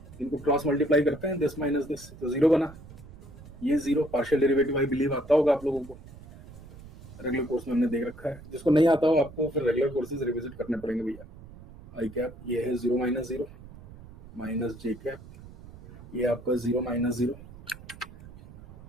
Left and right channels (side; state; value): right; noise; rumble, 18 dB below the sound